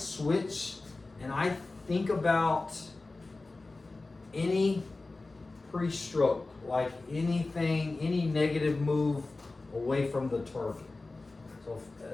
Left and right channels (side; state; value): right; quieter; 3.4 dB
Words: and I think about any pre-stroke, like anything, any negative move away from the target. So,